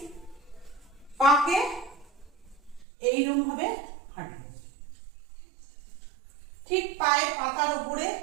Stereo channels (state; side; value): drops out; left; at 2.9 s